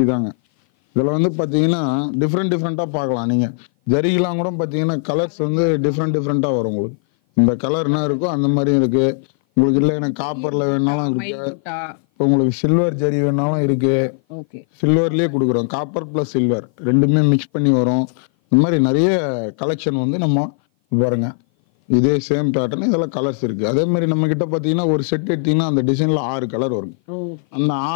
தாங்க. இதுல வந்து பாத்தீங்கன்னா டிஃப்ரெண்டா பார்க்கலாம். நீங்க ஜரிகெல்லாம் கூட பாத்தீங்கன்னா கலர்ஸ் வந்து டிஃப்ரெண்டா வரும் உங்களுக்கு. இந்த கலர் என்ன இருக்கோ அந்த மாதிரி இருக்கு உங்களுக்கு. இல்லை எனக்கு காப்பர்ல வேணாலும் இருக்கு, உங்களுக்கு சில்வர் ஜரி வேணாலும் இருக்கு. சில்வர்லயே கொடுக்குறோம். காப்பர் பிளஸ் சில்வர் ரெண்டுமே மிக்ஸ் பண்ணி வரும். இந்த மாதிரி நிறைய கலெக்ஷன் வந்து நம்ம பாருங்க. இதே சேம் பேட்டர்ன் இதெல்லாம் கலர்ஸ் இருக்கு. அதே மாதிரி நம்ம கிட்ட பாத்தீங்கன்னா ஒரு செட் எடுத்தீங்கன்னா அந்த டிசைன்ல 6 கலர் வரும். அந்த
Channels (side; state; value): right; silent; 57 dB below the other